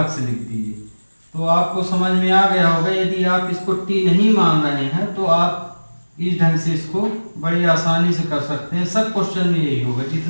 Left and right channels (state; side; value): inverted; both; correlation -1.00